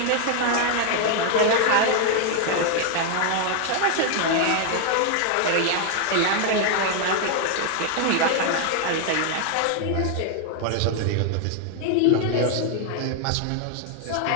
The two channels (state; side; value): different; both; correlation 0.00